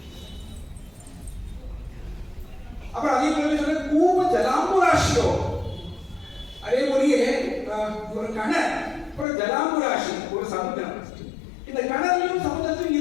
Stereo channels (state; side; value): drops out; right; at 9.2 s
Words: அப்புறம் அதே போல சொல்ல கூப ஜலாம்புராஷியோ, அதே போலயே ஒரு கடல் அப்புறம் ஜலாம்புராஷி ஒரு சமுத்திரம். இந்த கடலையும் சமுத்திரத்திலும்